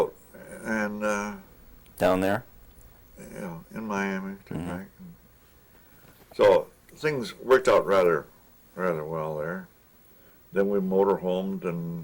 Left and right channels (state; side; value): identical; both; correlation 1.00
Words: and Down there? in Miami, took back. So things worked out rather well there. Then we motorhomed